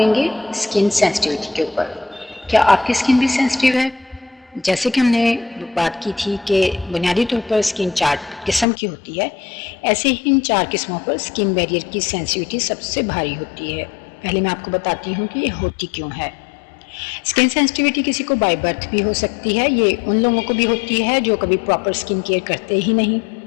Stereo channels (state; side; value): drops out; right; at 8.7 s